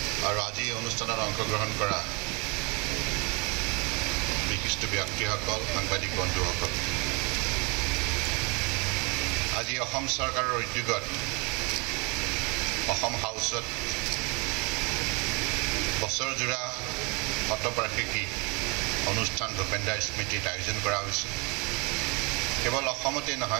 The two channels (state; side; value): quieter; left; 30.1 dB